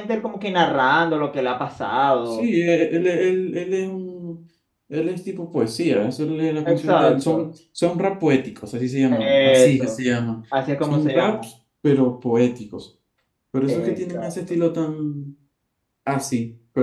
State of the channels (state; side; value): identical; both; correlation 1.00